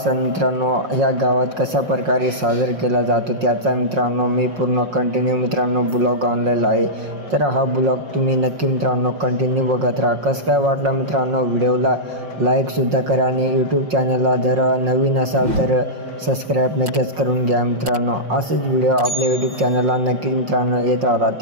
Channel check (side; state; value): left; late; 5.5 ms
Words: मित्रांनो ह्या गावात कशा प्रकारे साजरा केला जातो त्याचा मित्रांनो मी पूर्ण कंटिन्यू मित्रांनो ब्लॉग आणलेला आहे. तर हा ब्लॉग तुम्ही नक्की मित्रांनो कंटिन्यू बघत राहा. कसं काय वाटला मित्रांनो व्हिडिओला लाईकसुद्धा करा आणि यूट्यूब चॅनलला जर नवीन असाल तर सबस्क्राईब नक्कीच करून घ्या मित्रांनो. असेच व्हिडिओ आपल्या यूट्यूब चॅनलला नक्कीच मित्रांनो येत राहतात.